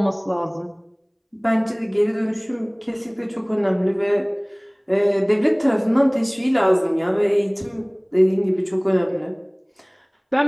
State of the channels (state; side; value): identical; both; correlation 1.00